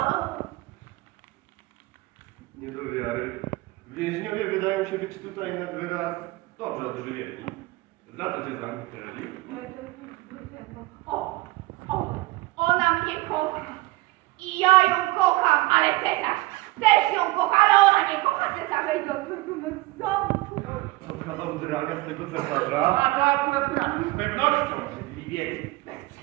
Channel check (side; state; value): left; quieter; 20.8 dB